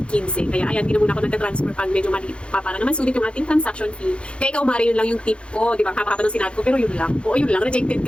Kaya ayan, hindi na muna ako nagta-transfer pag medyo maliit pa para naman sulit yung ating transaction fee. Kaya ikaw, Mari, yun lang yung tip ko. Di ba? Hapa-hapa ng sinabi ko, pero yun lang. Oo, yun lang. Rejected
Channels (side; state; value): right; late; 0.058 ms